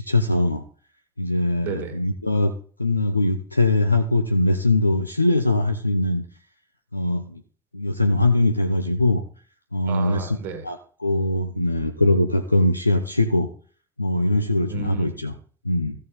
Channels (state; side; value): inverted; both; correlation -0.82